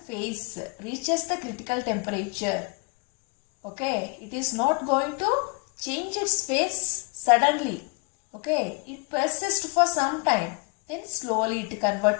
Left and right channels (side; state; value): right; quieter; 31.4 dB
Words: reaches the critical temperature, okay, it is not going to change its phase suddenly. Okay, it persists for some time, then slowly it